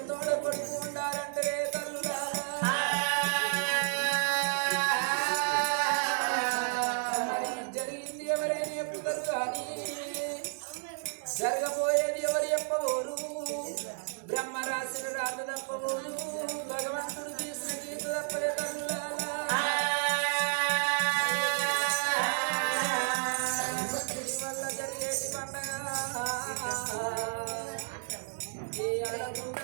కొడుకు ఉండాలంటే తల్లులారా జరిగింది ఎవరైనా చెప్పుతారు కానీ జరగబోయేది ఎవరు చెప్పబోరు బ్రహ్మ రాసిన రాత తప్పబోరు భగవంతుడు తీసిన గీత తప్పలే తల్లులారా వల్ల జరిగేటి పండగ ఈ అడగుండ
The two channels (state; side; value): silent; left; 57 dB below the other